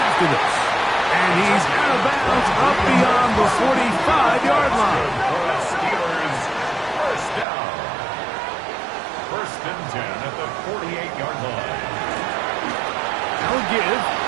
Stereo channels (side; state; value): left; drops out; at 7.5 s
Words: this. And he's out of bounds up beyond the 45-yard line. Steelers, first down. First and 10 at the 48-yard line. Now a give